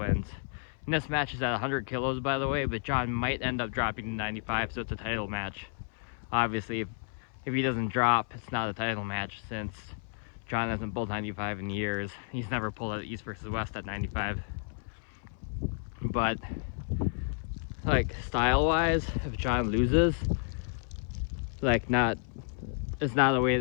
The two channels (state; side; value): silent; right; 57 dB below the other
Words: And this match is at 100 kilos, by the way, but John might end up dropping to 95, so it's a title match. Obviously, if he doesn't drop, it's not a title match since John hasn't pulled 95 in years. He's never pulled at East versus West at 95. But, like, style-wise, if John loses, like, it's not the way